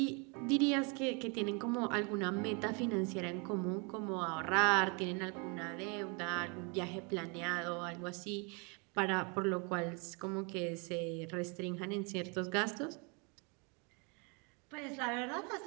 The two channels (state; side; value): quieter; left; 32.7 dB